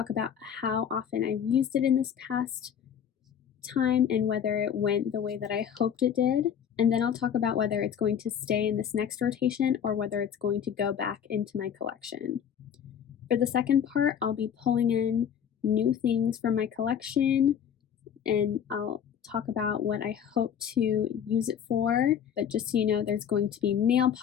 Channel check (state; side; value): quieter; right; 8.5 dB